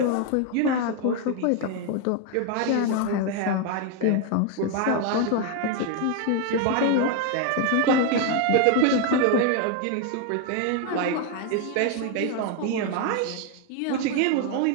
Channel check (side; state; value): both; different; correlation 0.01